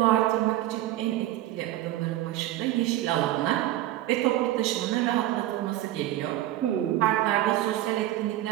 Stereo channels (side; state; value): left; quieter; 14.4 dB